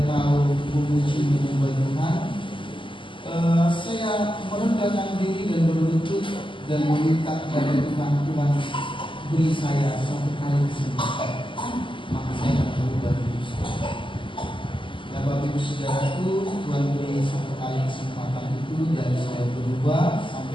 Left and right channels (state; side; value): late; right; 0.25 ms